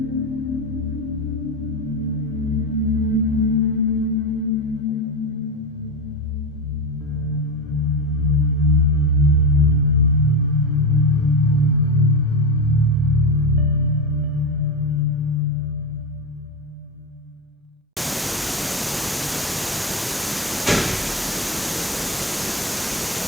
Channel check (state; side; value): normal; both; correlation 0.17